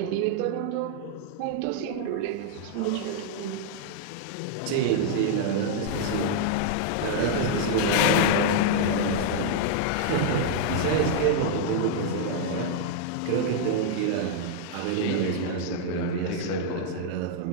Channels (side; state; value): both; different; correlation -0.01